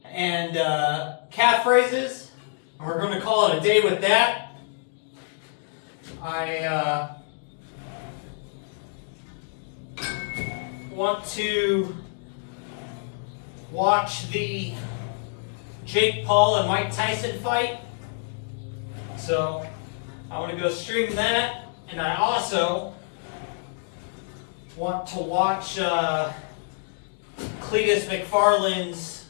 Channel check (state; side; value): silent; right; digital silence